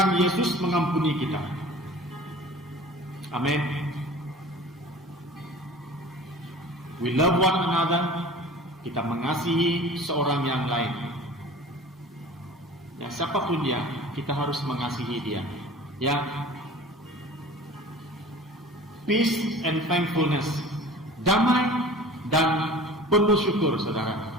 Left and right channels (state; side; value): normal; both; correlation 0.42